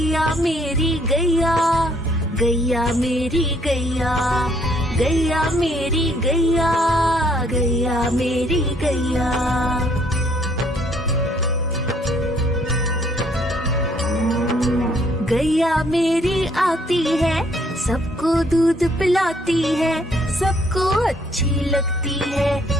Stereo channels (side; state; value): both; normal; correlation 0.66